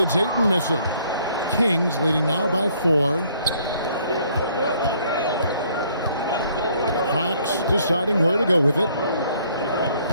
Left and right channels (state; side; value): inverted; both; correlation -0.63